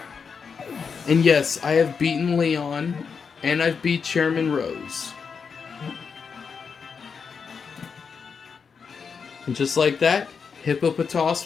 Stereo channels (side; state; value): right; quieter; 5.9 dB